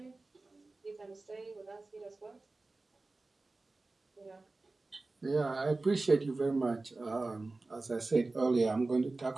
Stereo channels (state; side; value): quieter; left; 3.3 dB